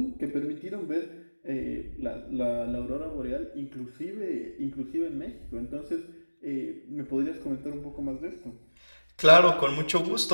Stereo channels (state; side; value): inverted; both; correlation -1.00